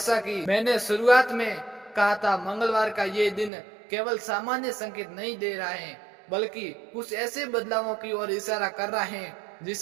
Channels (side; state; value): left; drops out; at 3.5 s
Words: कि मैंने शुरुआत में कहा था, मंगलवार का ये दिन केवल सामान्य संकेत नहीं दे रहा है, बल्कि कुछ ऐसे बदलावों की ओर इशारा कर रहा है